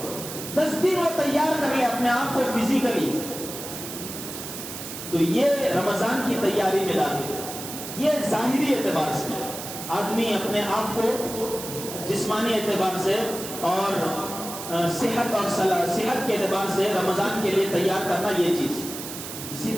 10 دن وہ تیار کر لے اپنے آپ کو فزیکلی، تو یہ رمضان کی تیاری میں داخل، یہ ظاہری اعتبار سے آدمی اپنے آپ کو جسمانی اعتبار سے اور صحت کے اعتبار سے رمضان کے لیے تیار کرنا، یہ چیز۔ اسی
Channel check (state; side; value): noise; right; hiss, 9 dB below the sound